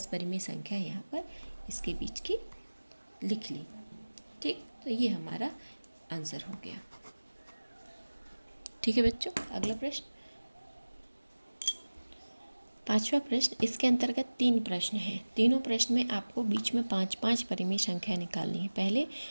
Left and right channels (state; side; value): inverted; both; correlation -1.00